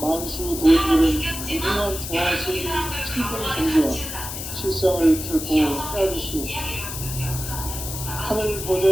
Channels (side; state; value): left; noise; hiss, 7 dB below the sound